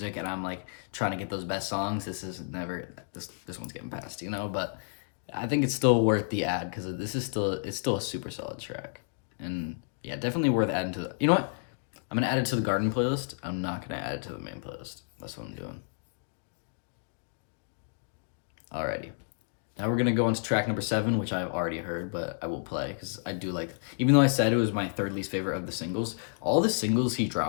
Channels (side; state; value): right; silent; digital silence